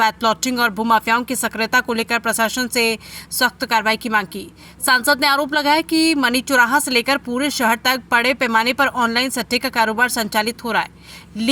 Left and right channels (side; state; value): both; identical; correlation 1.00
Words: प्लॉटिंग और भूमाफियाओं की सक्रियता को लेकर प्रशासन से सख्त कार्रवाई की मांग की। सांसद ने आरोप लगाया कि मनी चौराहा से लेकर पूरे शहर तक बड़े पैमाने पर ऑनलाइन सट्टे का कारोबार संचालित हो रहा है,